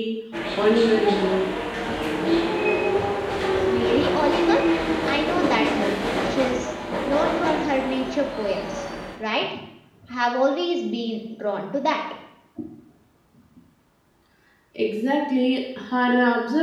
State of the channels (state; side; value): identical; both; correlation 1.00